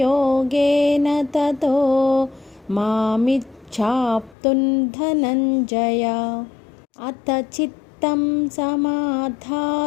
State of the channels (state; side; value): drops out; right; at 4.4 s